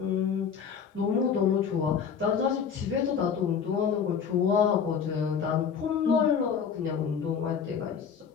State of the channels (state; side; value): quieter; right; 6.9 dB